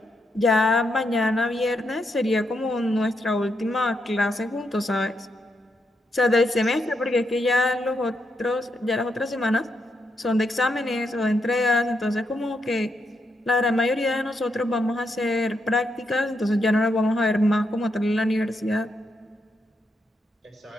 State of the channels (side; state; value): both; normal; correlation 0.81